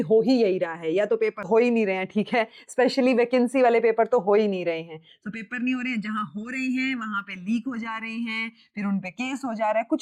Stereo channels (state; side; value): identical; both; correlation 1.00